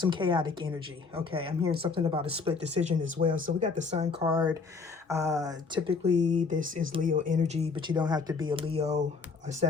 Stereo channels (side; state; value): right; quieter; 4.7 dB